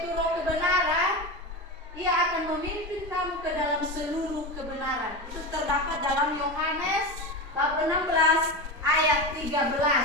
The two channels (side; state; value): both; normal; correlation 0.21